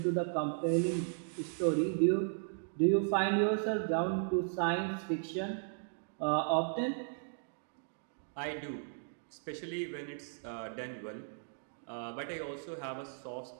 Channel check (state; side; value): silent; left; digital silence